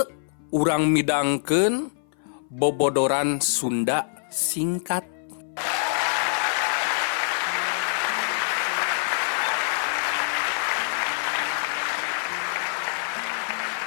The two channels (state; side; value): silent; right; 57 dB below the other